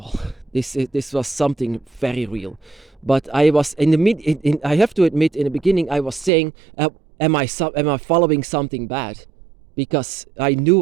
This was something very real. But I was I have to admit, in the beginning I was saying, am I following something bad? Because I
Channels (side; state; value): left; drops out; at 6.3 s